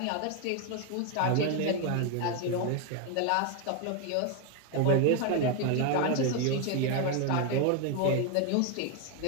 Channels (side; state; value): both; different; correlation 0.01